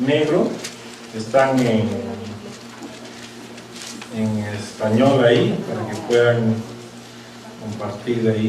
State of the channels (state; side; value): identical; both; correlation 1.00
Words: están en español ahí, para que puedan compartir